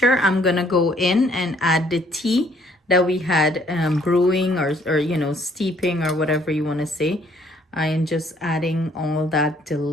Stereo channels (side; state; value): both; normal; correlation 0.63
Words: I'm gonna go in and add the tea that we had brewing or you know, steeping or whatever you want to say. I am just adding all that